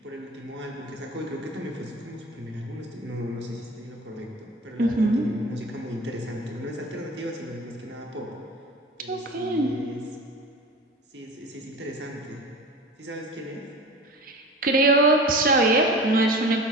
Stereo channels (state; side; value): normal; both; correlation 0.36